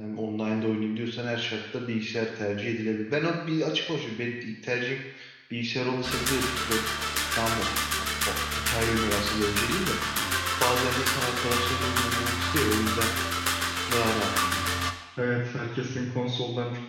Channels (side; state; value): both; identical; correlation 1.00